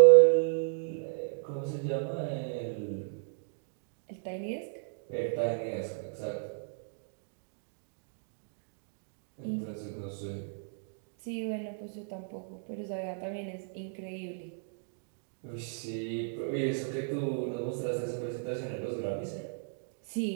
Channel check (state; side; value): silent; left; digital silence